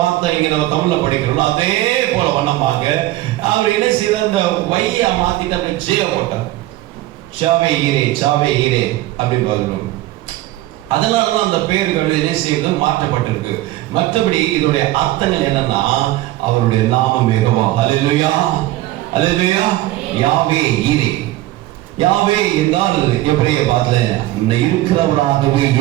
இங்க நம்ம தமிழ்ல படிக்கிறோம். அதே போல வண்ணமாக அவர் என்ன செய்தார், இந்த வையா மாத்திட்டு அப்படி ஜே போட்டார், சாவே ஈரே சாவே ஈரே அப்படின்னு சொல்லணும். அதனாலதான் அந்த பெயர்கள் என்ன செய்வது மாற்றப்பட்டிருக்கு. மற்றபடி இதோடைய அர்த்தங்கள் என்னன்னா, அவருடைய நாமம் யெகோவா. அல்லேலூயா அல்லேலூயா. யாவே ஈரே, யாவே என்றால் எபிரேய பாஷையில இருக்கிறவராகவே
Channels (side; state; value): left; quieter; 16.4 dB